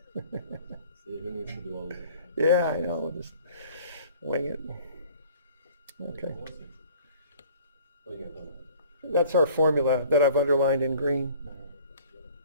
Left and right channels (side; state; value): both; inverted; correlation -0.51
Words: See, who needs to do all this? Yeah, I know. We'll just wing it. Okay. What do you got on? That's our formula that I've underlined in green.